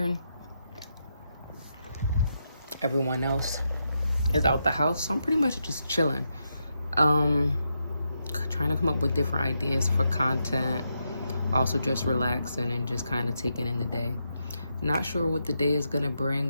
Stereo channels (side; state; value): both; inverted; correlation -0.83